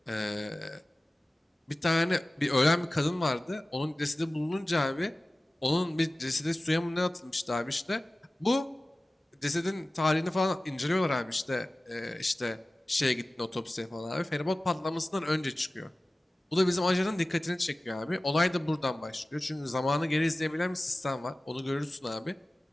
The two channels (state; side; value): normal; both; correlation 0.97